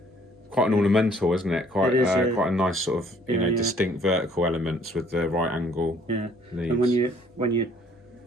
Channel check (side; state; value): both; normal; correlation 0.61